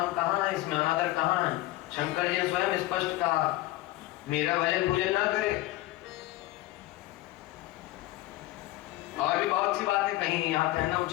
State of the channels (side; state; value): right; quieter; 17.3 dB